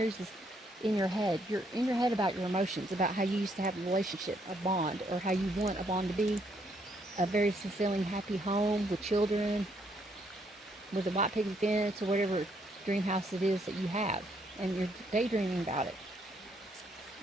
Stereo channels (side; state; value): both; normal; correlation 0.72